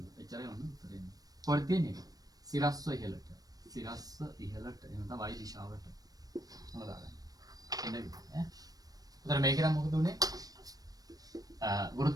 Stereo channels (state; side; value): late; left; 0.18 ms